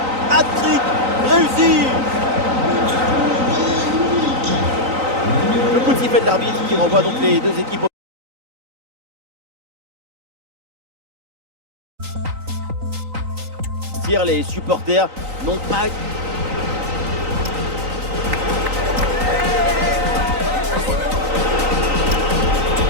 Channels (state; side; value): late; left; 3.9 ms